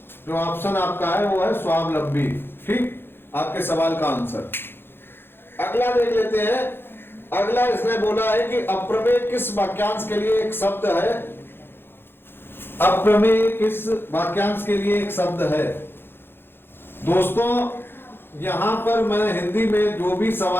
जो ऑप्शन आपका है वो है स्वावलंबी। ठीक, आपके सवाल का आंसर। अगला देख लेते हैं। अगला इसने बोला है कि अप्रमेय किस वाक्यांश के लिए एक शब्द है? अप्रमेय किस वाक्यांश के लिए एक शब्द है? दोस्तों यहां पर मैं हिंदी में जो भी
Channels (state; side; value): late; right; 0.10 ms